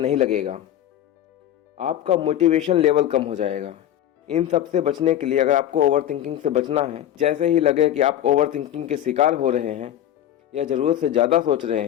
लगेगा, आपका मोटिवेशन लेवल कम हो जाएगा। इन सब से बचने के लिए अगर आपको ओवर थिंकिंग से बचना है, जैसे ही लगे कि आप ओवर थिंकिंग के शिकार हो रहे हैं या ज़रूरत से ज़्यादा सोच रहे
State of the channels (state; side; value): quieter; right; 11.4 dB